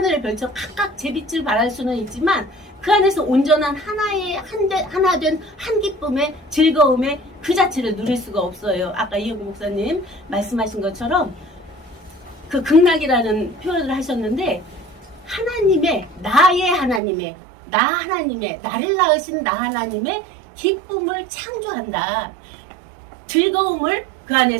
별처럼 각각 제 빛을 발할 수는 있지만 그 안에서 온전한 하나 된 한 기쁨의 즐거움의 그 자체를 누릴 수가 없어요. 아까 이영구 목사님 말씀하신 것처럼 그 극락이라는 표현을 하셨는데 하나님의 나를 낳으신 나 하나님의 기쁨을 창조한다. 즐거움을 그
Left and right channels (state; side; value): drops out; left; at 17.0 s